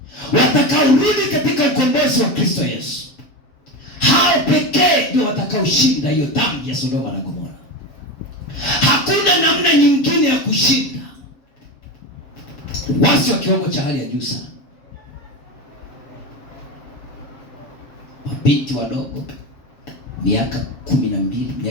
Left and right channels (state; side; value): late; right; 7.6 ms